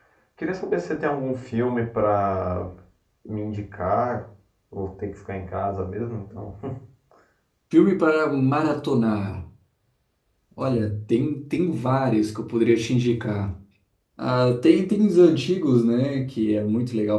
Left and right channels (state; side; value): identical; both; correlation 1.00